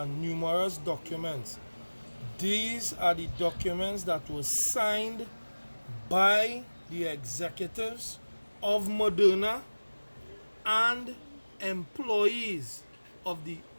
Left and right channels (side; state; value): both; inverted; correlation -1.00